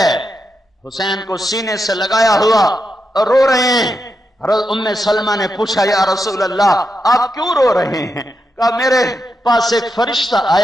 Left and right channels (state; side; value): normal; both; correlation 0.86